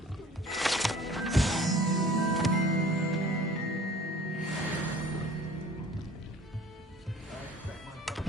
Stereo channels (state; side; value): normal; both; correlation 0.48